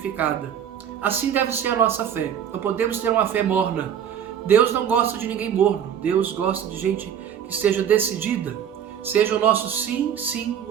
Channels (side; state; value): left; quieter; 8.9 dB